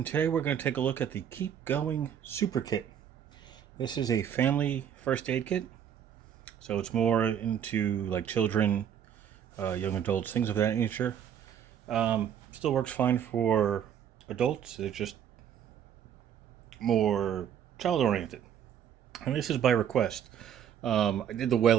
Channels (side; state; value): left; quieter; 9.0 dB